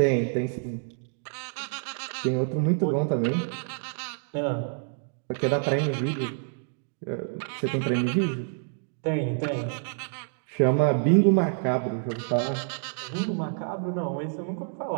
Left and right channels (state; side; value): silent; left; digital silence